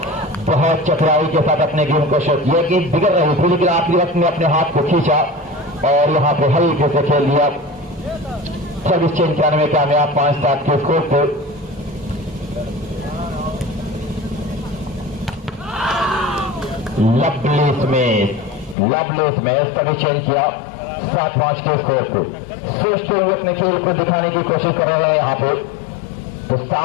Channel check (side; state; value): right; drops out; at 18.8 s